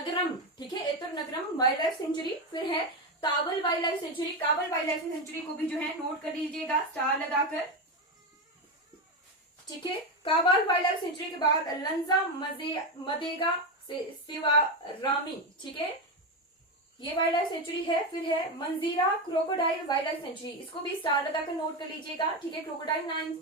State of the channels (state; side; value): normal; both; correlation 0.13